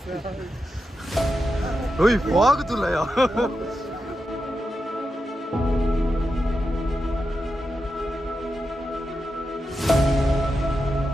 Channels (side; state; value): both; normal; correlation 0.88